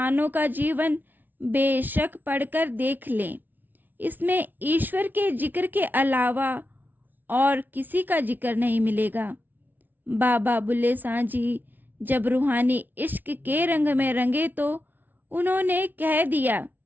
का जीवन बेशक पढ़कर देख लें। इसमें ईश्वर के जिक्र के अलावा और किसी का जिक्र नहीं मिलेगा। बाबा बुल्ले शाह जी जब रूहानी इश्क के रंग में रंगे तो उन्होंने कह दिया,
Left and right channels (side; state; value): left; late; 0.087 ms